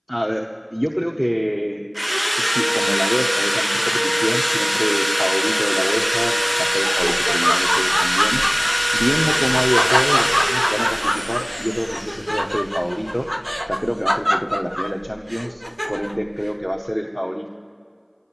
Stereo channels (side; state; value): both; identical; correlation 1.00